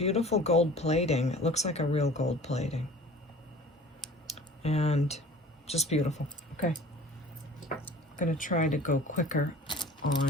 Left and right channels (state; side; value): normal; both; correlation 0.45